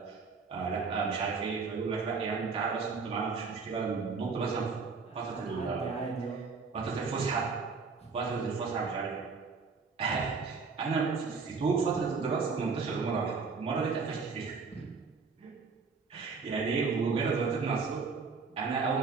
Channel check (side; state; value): left; quieter; 4.8 dB